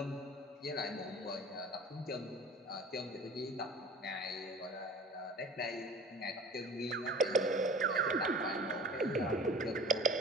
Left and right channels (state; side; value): normal; both; correlation 0.41